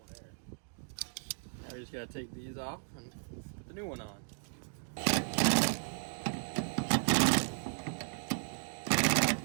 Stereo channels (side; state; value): left; silent; digital silence